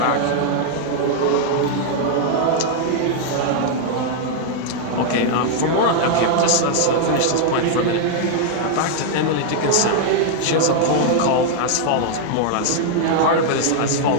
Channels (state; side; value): different; both; correlation 0.00